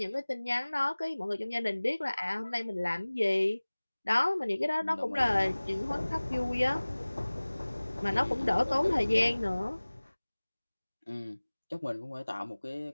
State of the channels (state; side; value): inverted; both; correlation -1.00